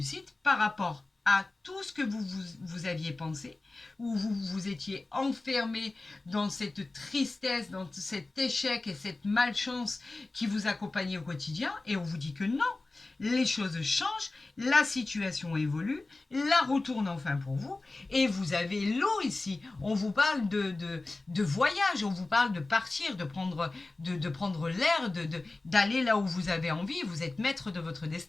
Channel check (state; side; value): quieter; right; 3.2 dB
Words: par rapport à tout ce que vous aviez pensé, où vous vous étiez enfermé dans cette tristesse, dans cet échec et cette malchance qui vous accompagnait au quotidien, et on vous dit que non, les choses changent, la situation évolue, la roue tourne enfin pour vous, et vous avez l'eau ici. On vous parle de voyage, on vous parle de partir, de prendre l'air, d'aller là où vous avez envie. Vous êtes maître de votre